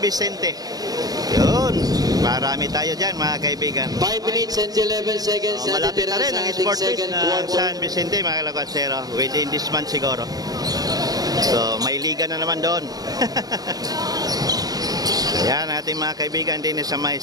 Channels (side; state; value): left; late; 0.18 ms